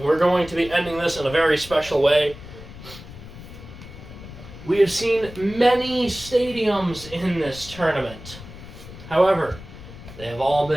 we're going to be ending this in a very special way. We have seen many stadiums in this tournament. However, they have all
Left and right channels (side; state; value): left; noise; rumble, 15 dB below the sound